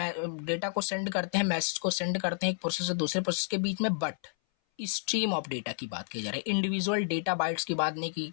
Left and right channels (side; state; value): right; silent; 57 dB below the other